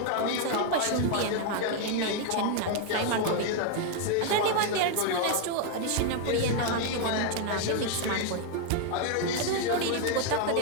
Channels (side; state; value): both; different; correlation 0.00